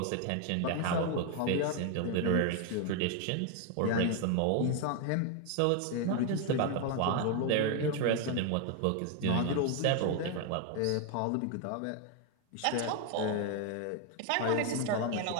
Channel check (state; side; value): different; both; correlation 0.01